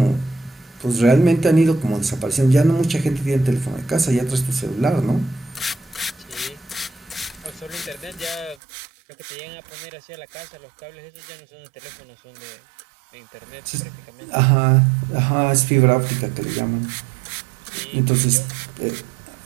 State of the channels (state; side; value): drops out; left; at 8.6 s